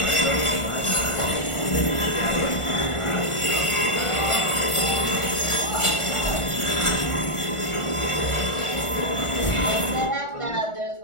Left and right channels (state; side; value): late; right; 1.4 ms